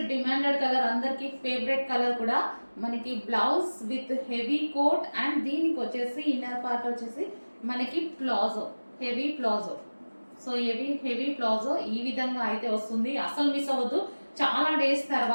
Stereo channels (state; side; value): inverted; both; correlation -1.00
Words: demanded colour, అందరికి ఫేవరెట్ కలర్ కూడా. మనకి blouse with heavy coat and దీనికి వచ్చేసి ఇన్నర్ పార్ట్ వచ్చేసి మనకి palazzo, heavy palazzo. So heavy palazzo ఈ విధంగా అయితే వస్తుంది. అసలు మిస్ అవ్వద్దు. చాలా డేస్